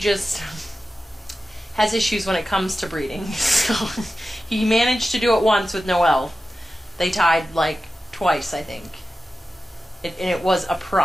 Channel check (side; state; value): both; normal; correlation 0.93